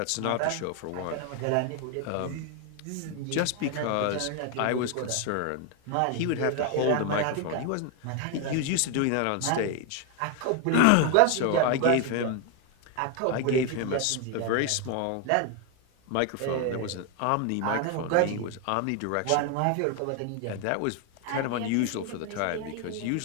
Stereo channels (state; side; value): different; both; correlation 0.01